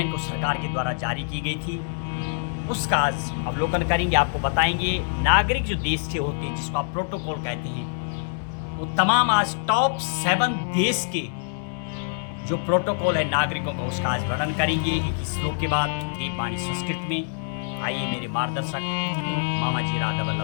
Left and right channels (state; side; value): silent; right; 60 dB below the other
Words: को सरकार के द्वारा जारी की गई थी उसका आज अवलोकन करेंगे। आपको बताएंगे नागरिक जो देश के होते हैं जिसको आप प्रोटोकॉल कहते हैं, वो तमाम आज टॉप 7 देश के जो प्रोटोकॉल है नागरिकों का उसका आज वर्णन करेंगे एक श्लोक के बाद देववाणी संस्कृत में। आइए मेरे मार्गदर्शक मामा जी राधा